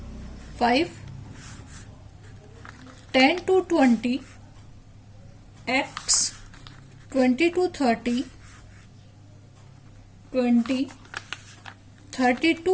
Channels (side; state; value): both; identical; correlation 1.00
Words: 5, 10 to 20, x, 20 to 30, 20, 30